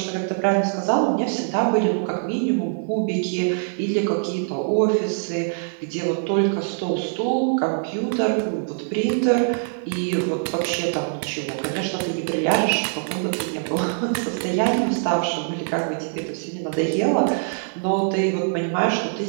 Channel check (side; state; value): left; silent; 63 dB below the other